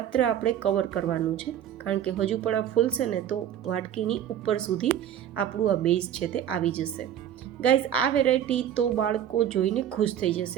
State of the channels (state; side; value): quieter; left; 10.2 dB